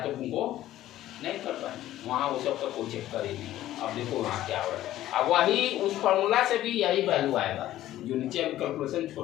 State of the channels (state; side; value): quieter; right; 13.9 dB